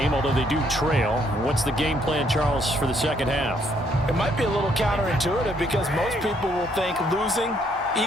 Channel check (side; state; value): both; normal; correlation 0.69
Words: although they do trail. What's the game plan, Charles, for the second half? It might be a little counterintuitive because most people will think losing